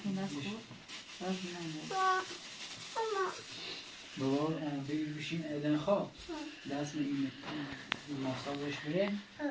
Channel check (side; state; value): both; identical; correlation 1.00